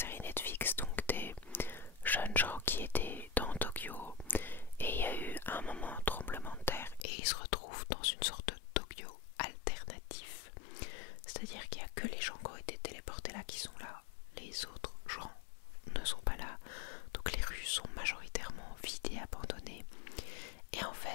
Netflix, donc des jeunes gens qui étaient dans Tokyo et il y a eu un moment un tremblement de terre et ils se retrouvent dans une sorte de Tokyo alternatif. C'est-à-dire qu'il n'y a que les gens qui ont été téléportés là qui sont là, les autres gens ne sont pas là, donc les rues sont majoritairement vides et abandonnées. Et en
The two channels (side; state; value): right; drops out; at 7.1 s